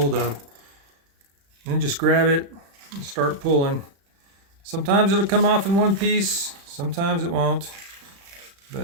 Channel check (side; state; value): left; late; 35 ms